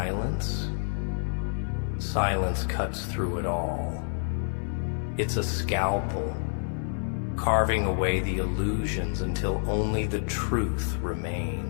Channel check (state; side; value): silent; right; 59 dB below the other